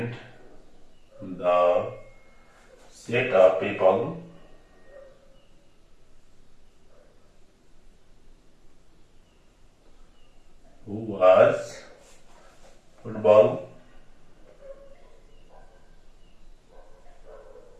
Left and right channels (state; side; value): identical; both; correlation 1.00